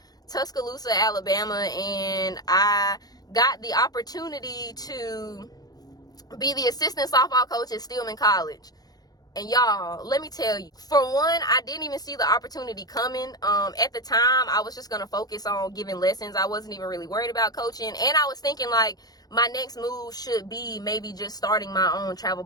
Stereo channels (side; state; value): right; late; 0.19 ms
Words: Tuscaloosa, Alabama, and I got the opportunity to be the assistant softball coach at Stillman College. And y'all, let me tell you, for one, I didn't even see the opportunity coming. At the time, I was just going to focus on giving lessons. I wasn't even really worried about coaching. And I was thinking like my next move should be maybe just starting my own travel